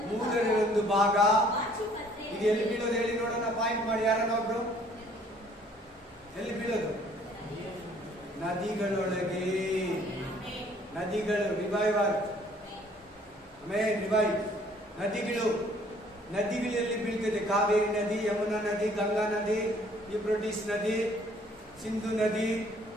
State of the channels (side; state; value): both; normal; correlation 0.59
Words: 1/3 ಭಾಗ. ಇದು ಎಲ್ಲಿ ಬೀಳೋದು ಹೇಳಿ ನೋಡೋಣ, ಪಾಯಿಂಟ್ ಮಾಡಿ ಯಾರನ್ನ ಒಬ್ರು. ಎಲ್ಲಿ ಬೀಳೋದು? ನದಿಗಳೊಳಗೆ. ನದಿಗಳು ರಿವೈವರ್. ಆಮೇಲೆ ರಿವೈವ್ ನದಿಗಳಲ್ಲಿ ಬೀಳ್ತದೆ. ಕಾವೇರಿ ನದಿ, ಯಮುನಾ ನದಿ, ಗಂಗಾ ನದಿ, ಯೂಫ್ರಟಿಸ್ ನದಿ, ಸಿಂಧು ನದಿ,